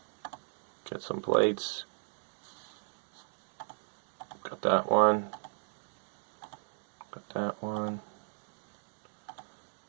get some plates. Got that one. Got that one.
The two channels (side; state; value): left; silent; digital silence